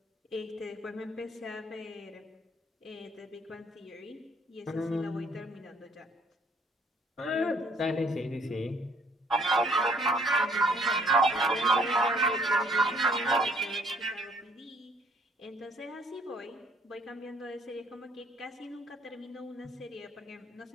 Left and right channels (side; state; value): both; normal; correlation 0.63